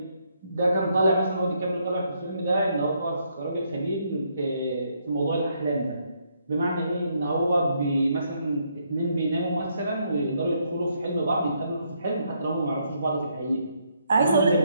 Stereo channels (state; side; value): inverted; both; correlation -0.74